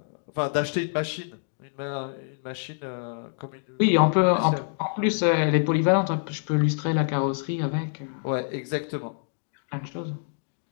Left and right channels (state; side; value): silent; right; digital silence